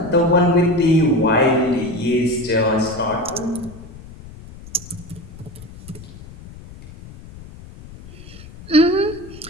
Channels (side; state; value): left; noise; rumble, 17 dB below the sound